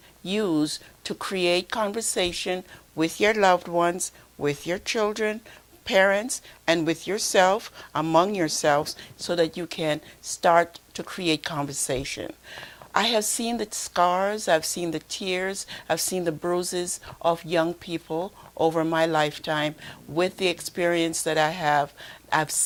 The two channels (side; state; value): both; identical; correlation 1.00